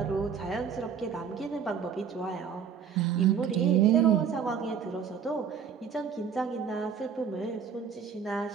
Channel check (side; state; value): left; quieter; 7.1 dB